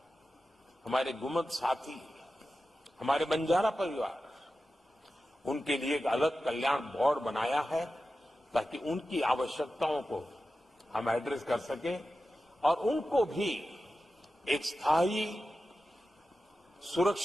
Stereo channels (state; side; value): normal; both; correlation 0.93